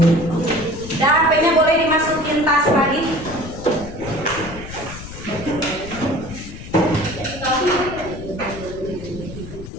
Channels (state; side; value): noise; left; rumble, 12 dB below the sound